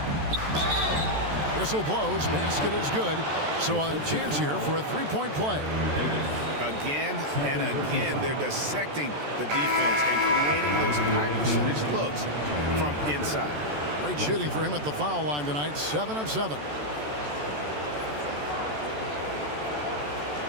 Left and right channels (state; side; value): late; left; 14 ms